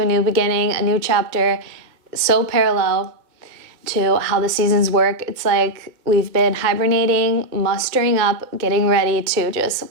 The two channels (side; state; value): left; late; 2.1 ms